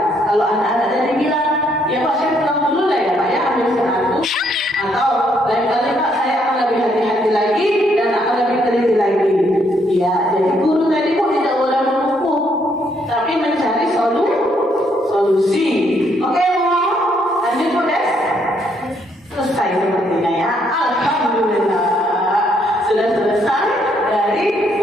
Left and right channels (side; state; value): both; normal; correlation 0.71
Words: Kalau anak-anak tadi bilang, ya Pak saya pulang dulu lah ya Pak ya, ambil satu, atau lain kali Pak saya akan lebih hati-hati lagi dan akan lebih teliti lagi. Ya, jadi guru tadi kok tidak boleh menghukum, tapi mencari solusi. Oke Bu, lanjut Bu Des. Selesai sepertinya ya. Alhamdulillah sudah selesai dari